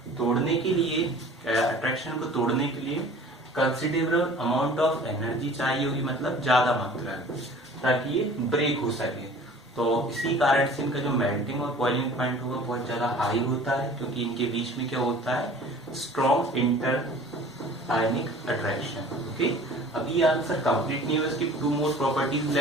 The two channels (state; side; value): normal; both; correlation 0.46